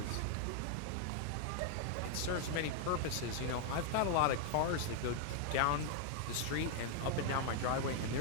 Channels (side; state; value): both; different; correlation 0.00